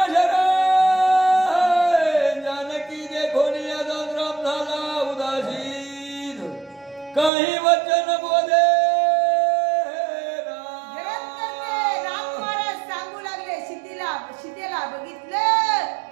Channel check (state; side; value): drops out; left; at 7.3 s